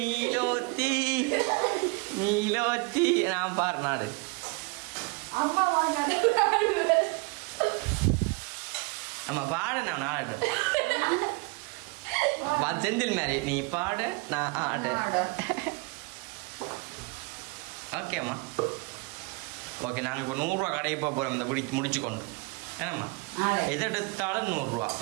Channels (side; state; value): left; quieter; 28.7 dB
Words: நீலோத்தி நான் பாரு நாடு நம்ம பாட நான் ஆடட்டும் செந்தில் மாதிரி நீ பாட நான் ஆட. ஓகே அம்மா ஓகே. நாங்கள் இப்போ 100 ரூபா கடையை போக போகிறோம் இந்த முடிச்சு கொண்டு. ஏன்னாம்மா எதை எடுத்தாலும் 100 ரூபா,